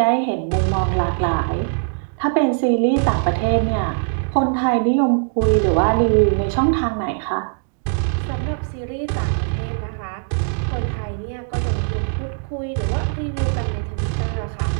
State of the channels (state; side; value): silent; left; digital silence